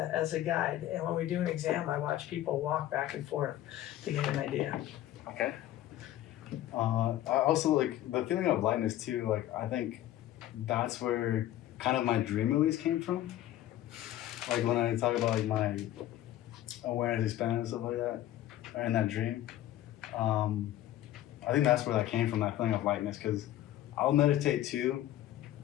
guide. And when we do an exam, I watch people walk back and forth to get an idea. Okay. I also like the feeling of lightness too. Like I think that's where kind of my dream release came from. Like when I talk about like my awareness expanding and stuff like that, or in that dream, I think that's where that came from. That feeling of lightness, because I'll meditate too,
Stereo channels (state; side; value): quieter; right; 13.4 dB